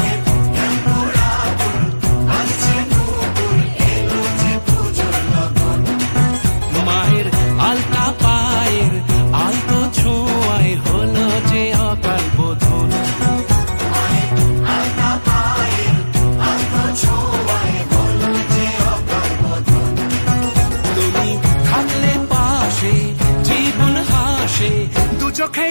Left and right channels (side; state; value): both; inverted; correlation -1.00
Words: মায়ের আলতা পায়ের আলতো ছোঁয়ায় হলো যে অকাল বোধন। তুমি থাকলে পাশে জীবন হাসে, দু চোখে